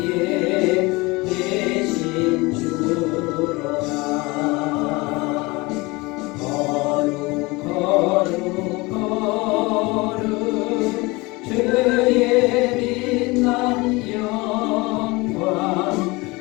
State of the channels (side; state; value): right; quieter; 23.9 dB